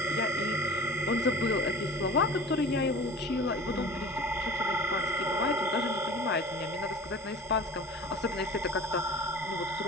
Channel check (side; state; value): both; normal; correlation 0.40